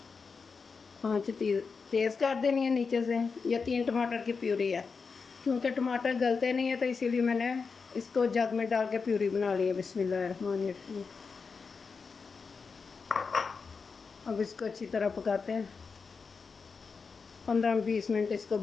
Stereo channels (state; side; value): quieter; right; 5.1 dB